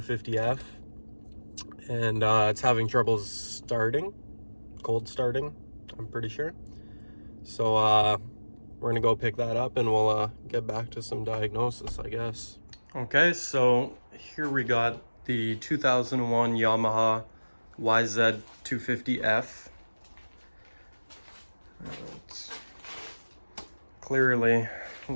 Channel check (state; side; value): inverted; both; correlation -1.00